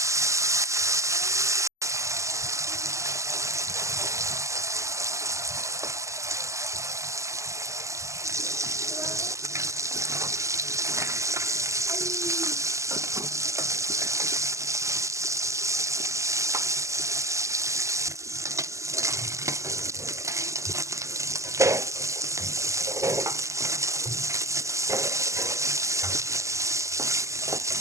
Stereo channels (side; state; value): left; late; 0.15 ms